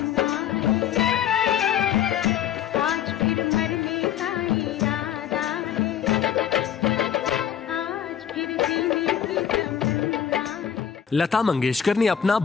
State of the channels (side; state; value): right; quieter; 9.3 dB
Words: लता मंगेशकर ने अपना